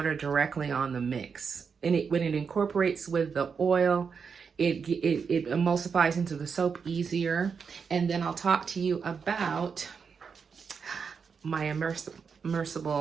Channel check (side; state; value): left; quieter; 6.0 dB